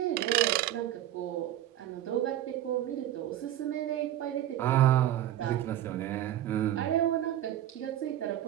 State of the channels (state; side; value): quieter; left; 12.6 dB